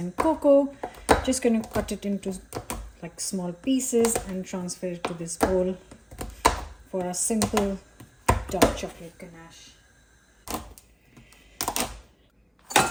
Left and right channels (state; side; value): identical; both; correlation 1.00